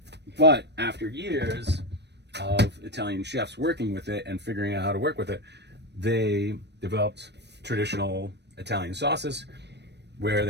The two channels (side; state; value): left; late; 0.50 ms